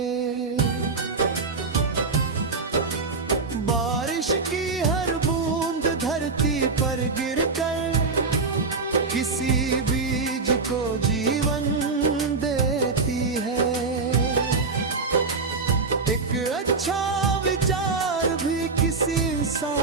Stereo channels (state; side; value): quieter; left; 4.3 dB